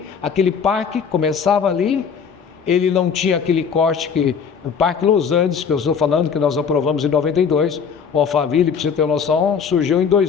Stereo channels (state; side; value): quieter; right; 6.5 dB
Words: aquele parque começava ali, ele não tinha aquele corte que... O Parque Los Andes, que eu estou falando, que nós aprovamos em 92, o Alphaville, para você ter noção, surgiu em